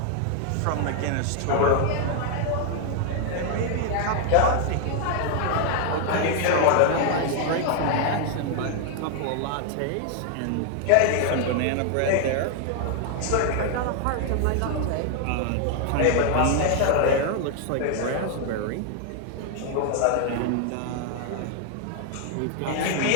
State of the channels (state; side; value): different; both; correlation 0.00